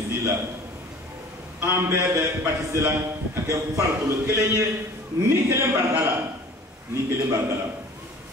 la an bɛɛ bɛ batise la ka kɛ farikolo kelen ye ni kelen barika la ni kelen barika la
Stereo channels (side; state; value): both; normal; correlation 0.46